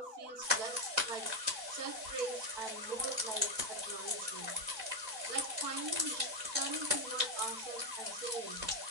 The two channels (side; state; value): left; late; 4.0 ms